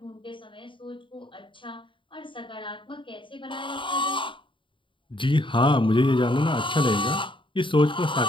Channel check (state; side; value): late; right; 0.24 ms